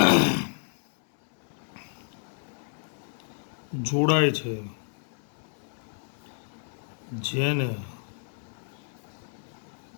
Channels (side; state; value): right; silent; 58 dB below the other